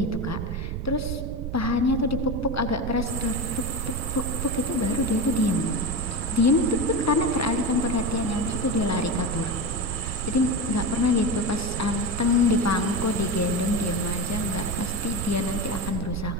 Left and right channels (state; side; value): noise; right; rumble, 4 dB below the sound